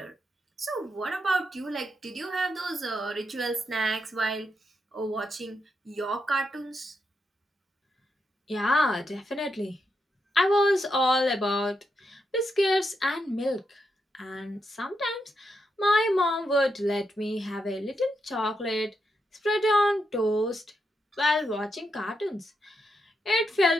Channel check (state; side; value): normal; both; correlation 0.83